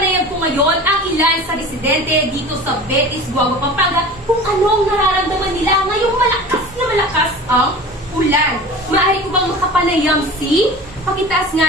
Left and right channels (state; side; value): normal; both; correlation 0.37